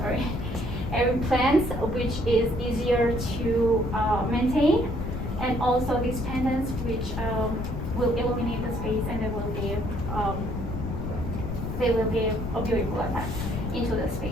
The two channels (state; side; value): noise; left; rumble, 5 dB below the sound